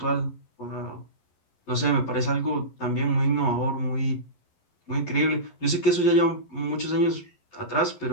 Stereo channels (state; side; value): late; right; 11 ms